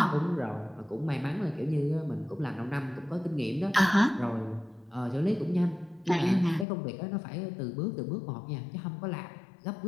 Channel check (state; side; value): drops out; right; at 6.7 s